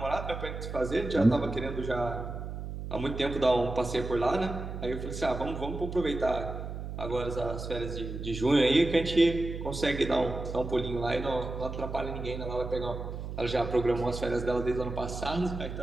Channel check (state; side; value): noise; right; hum, 7 dB below the sound